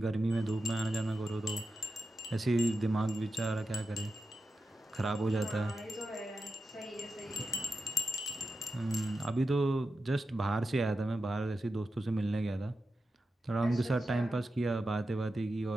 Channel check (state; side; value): normal; both; correlation 0.90